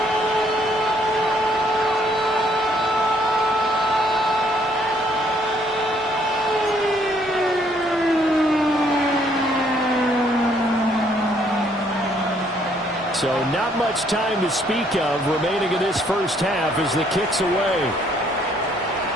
So not much time to speak of remaining in this first half as the kick's away.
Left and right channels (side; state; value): both; normal; correlation 0.66